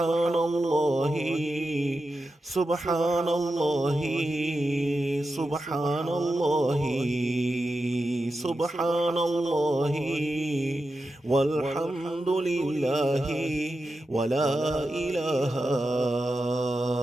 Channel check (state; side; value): normal; both; correlation 0.90